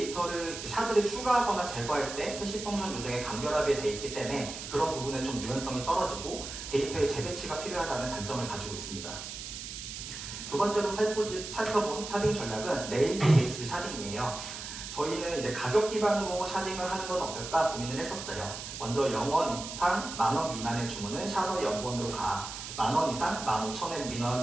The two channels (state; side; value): noise; right; hiss, 9 dB below the sound